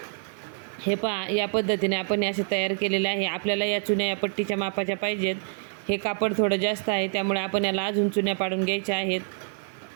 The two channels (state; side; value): silent; left; 60 dB below the other